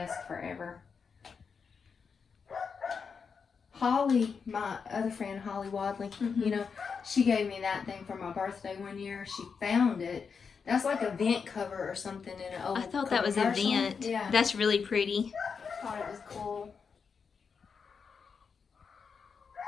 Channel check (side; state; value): right; quieter; 5.8 dB